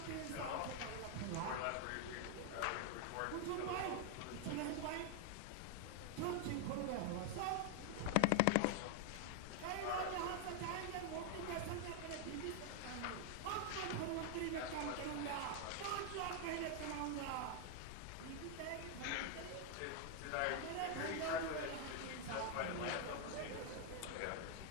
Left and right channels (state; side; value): different; both; correlation 0.00